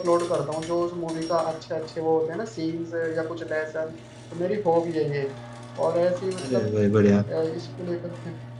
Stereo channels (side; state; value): both; identical; correlation 1.00